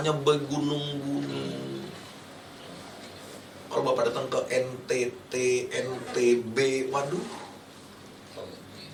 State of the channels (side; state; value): both; identical; correlation 1.00